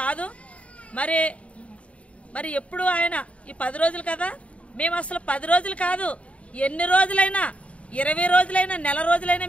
కాదు. మరి ఎప్పుడు ఆయన ఈ 10 రోజులు కదా, మేము అసలు 10 రోజులు కాదు, ఎన్ని రోజులైనా 20 రోజులైనా నెల రోజులైనా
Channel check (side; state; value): right; late; 0.064 ms